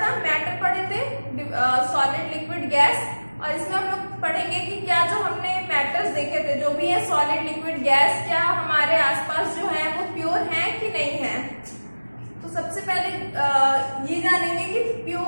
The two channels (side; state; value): both; inverted; correlation -1.00